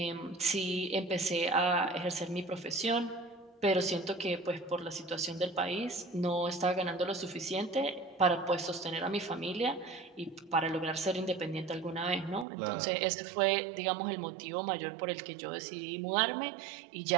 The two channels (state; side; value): drops out; left; at 12.5 s